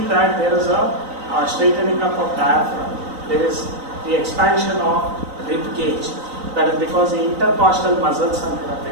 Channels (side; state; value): left; late; 3.9 ms